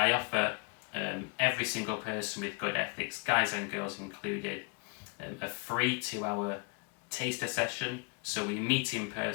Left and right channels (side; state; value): right; quieter; 33.1 dB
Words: offer every single person with good ethics, guys and girls included, a free 2-hour taster session. So we meet in